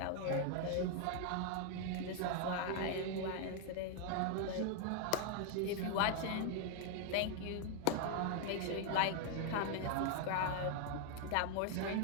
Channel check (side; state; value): both; different; correlation 0.00